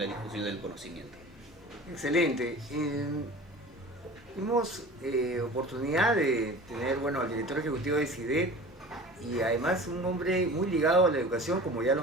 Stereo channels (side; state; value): both; normal; correlation 0.39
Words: difusión del conocimiento. Excelente. Tuvimos oportunidad de tener, bueno, al director ejecutivo de CIDET, y además un hombre muy ligado a la educación, como ya lo